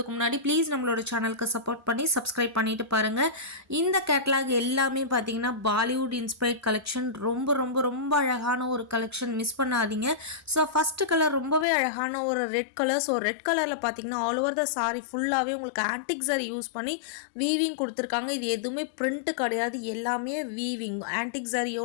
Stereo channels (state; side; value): drops out; right; at 11.7 s